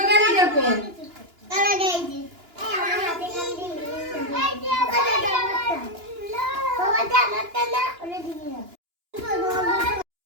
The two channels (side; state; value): left; late; 2.9 ms